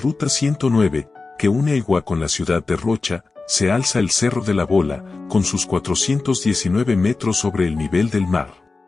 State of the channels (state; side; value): quieter; right; 3.9 dB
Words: 109, que une Aigua con la ciudad de Rocha, se alza el Cerro de la Bola, con sus 419 metros sobre el nivel del mar.